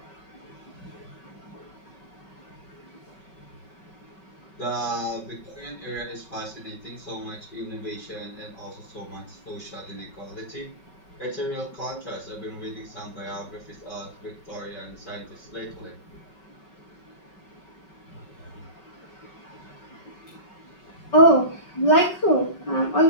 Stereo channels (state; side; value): late; right; 5.3 ms